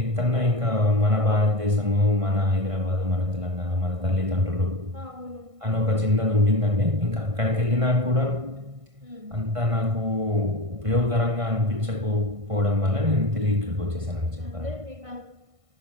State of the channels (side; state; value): left; late; 1.6 ms